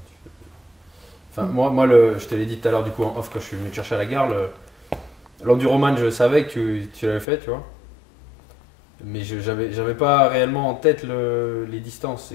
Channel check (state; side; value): drops out; right; at 7.2 s